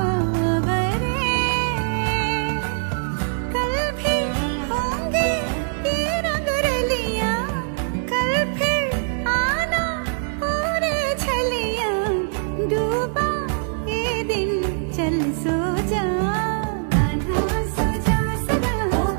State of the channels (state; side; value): silent; left; digital silence